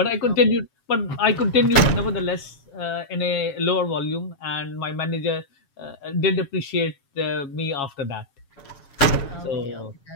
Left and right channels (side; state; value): right; late; 7.3 ms